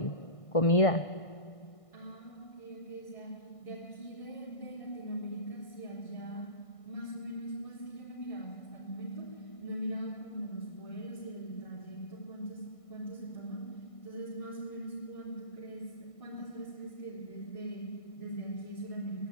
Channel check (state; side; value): late; right; 1.6 ms